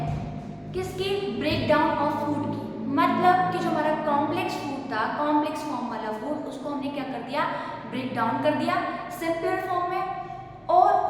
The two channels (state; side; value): identical; both; correlation 1.00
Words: किसकी, ब्रेक डाउन ऑफ फूड की, मतलब कि जो हमारा कॉम्प्लेक्स फूड था, कॉम्प्लेक्स फॉर्म वाला फूड, उसको हमने क्या कर दिया, ब्रेक डाउन कर दिया सिंपलर फॉर्म में। और